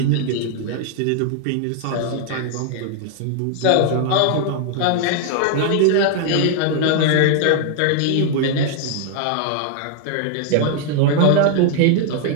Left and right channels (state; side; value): different; both; correlation 0.00